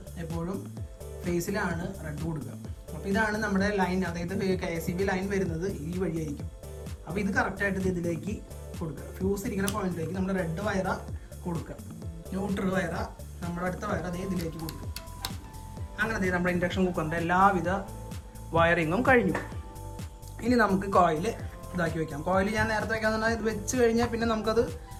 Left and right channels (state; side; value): identical; both; correlation 1.00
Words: എപ്പോഴും ഫേസിലാണ് റെഡ് കൊടുക്കുക. അപ്പോൾ ഇതാണ് നമ്മുടെ ലൈൻ, അതായത് KCB ലൈൻ വരുന്നത് ഈ വഴിയായിരിക്കും. അപ്പോൾ ഇത് കറക്റ്റായിട്ട് ഇതിലേക്ക് കൊടുക്കുക. ഫ്യൂസ് ഇരിക്കുന്ന പോയിന്റിലേക്ക് നമ്മൾ റെഡ് വയറ കൊടുക്കുക, ന്യൂട്രൽ വയറ നമ്മുടെ അടുത്ത വയർ അതേ ഇതിലേക്ക് കൊടുക്കുക. അങ്ങനെ നമ്മുടെ ഇൻഡക്ഷൻ കുക്കറിൻ്റെ എല്ലാവിധ വയറിങ്ങും കഴിഞ്ഞു. ഇനി നമുക്ക് കോയിൽ ഇതാക്കി വെക്കാം. കോയിൽ ഞാൻ നേരത്തെ വെക്കാന്ന് പറഞ്ഞാൽ ഇത് വെച്ച് കഴിഞ്ഞാൽ പിന്നെ നമുക്കത്